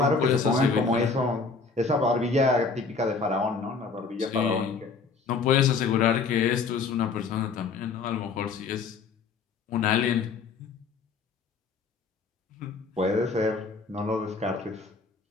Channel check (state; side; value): quieter; right; 4.7 dB